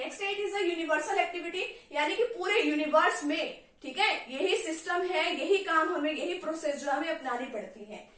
it is a universal activity, यानी कि पूरे यूनिवर्स में, ठीक है, यही सिस्टम है, यही काम हमें, यही प्रोसेस जो हमें अपनानी पड़ती है।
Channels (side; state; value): both; identical; correlation 1.00